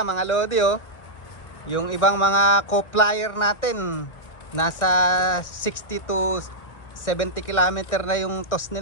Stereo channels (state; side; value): late; right; 1.6 ms